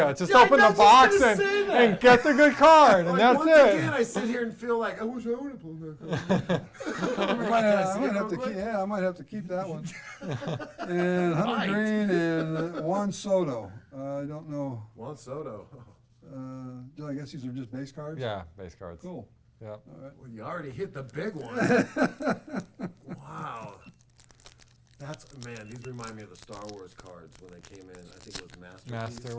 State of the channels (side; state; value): both; identical; correlation 1.00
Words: do- Just Yeah, open I'm the not just box gonna and, say that. and get the good card, and Like, that's once it. again, I sit here and feel like I wish I would have pulled that card. I might have to keep. Yeah, I might have to keep that one. And Hunter Might. Green and Juan Soto. I don't know. Juan Soto. I guess these are just base cards. Yeah, base cards. Cool. Yeah. All right. Well, you already hit the big one. Wow. Man, these remind me of the Star Wars cards when they came in. I think it was